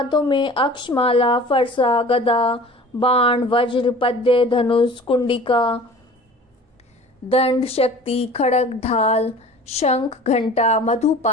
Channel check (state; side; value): normal; both; correlation 0.43